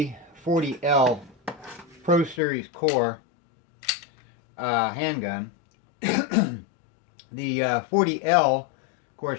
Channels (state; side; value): drops out; right; at 2.4 s